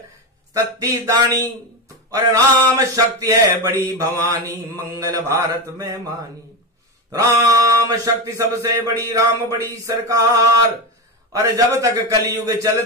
सत्ती दानी। और राम शक्ति है बड़ी भवानी, मंगल भारत में मानी। राम शक्ति सबसे बड़ी, राम बड़ी सरकार, और जब तक कलयुग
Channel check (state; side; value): normal; both; correlation 0.16